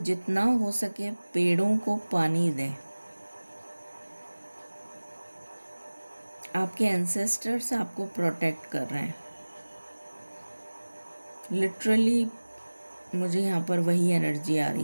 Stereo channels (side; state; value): both; inverted; correlation -1.00